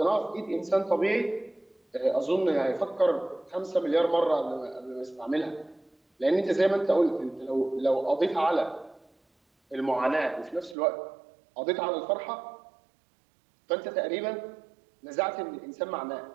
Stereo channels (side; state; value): left; drops out; at 10.8 s